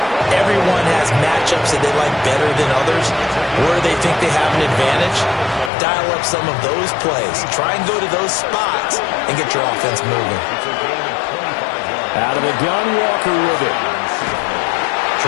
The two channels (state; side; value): drops out; right; at 5.7 s